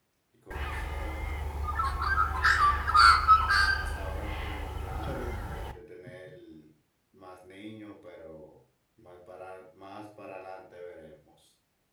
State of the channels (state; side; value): identical; both; correlation 1.00